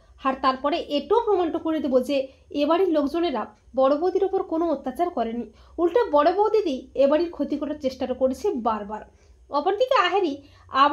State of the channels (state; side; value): identical; both; correlation 1.00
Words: আর তারপরে এটাও প্রমাণটা করে দেবো যে এবাড়ির লোকজনেরা বড় বৌদির ওপর কোনো অত্যাচার করেনি, উল্টো বড় বৌদিদি এবাড়ির ক্ষতি করার চেষ্টাটা করেছে বারবার। অপরদিকে আহেরি